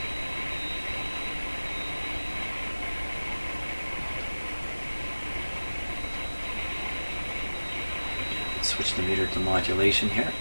Switch the meter to modulation here.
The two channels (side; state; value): both; inverted; correlation -1.00